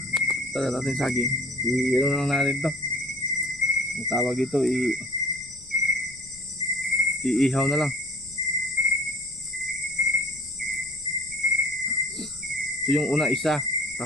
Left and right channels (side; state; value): left; noise; rumble, 24 dB below the sound